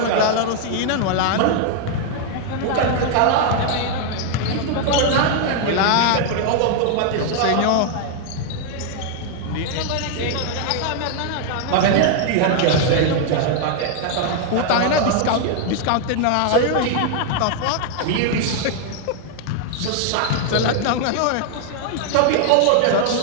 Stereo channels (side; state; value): both; different; correlation 0.00